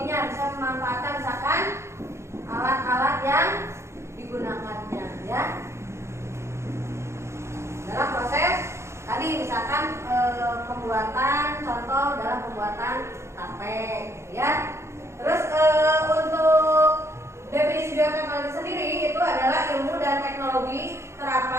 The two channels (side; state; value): left; late; 0.13 ms